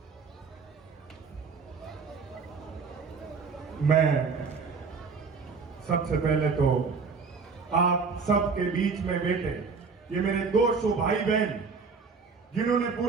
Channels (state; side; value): quieter; left; 5.0 dB